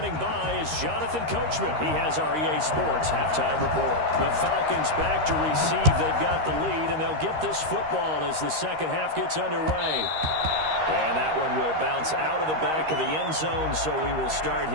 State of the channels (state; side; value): late; left; 13 ms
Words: by is Jonathan Coachman. He has our EA Sports halftime report. The Falcons back to receive. They've got the lead, and they'll get this football as the second half gets underway. And that one will bounce out of the back of the end zone, so we will start